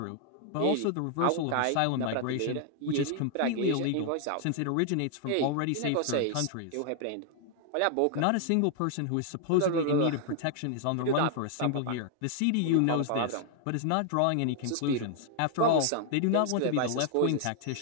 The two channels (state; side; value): different; both; correlation 0.00